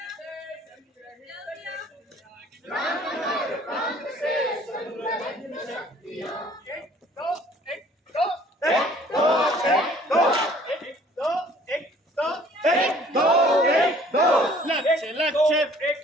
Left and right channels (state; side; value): normal; both; correlation 0.55